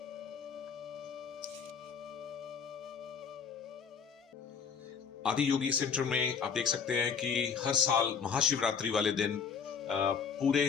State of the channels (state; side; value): quieter; right; 6.6 dB